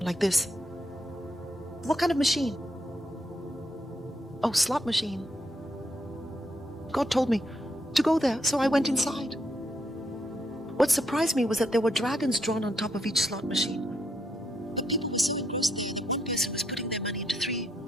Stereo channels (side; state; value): both; normal; correlation 0.77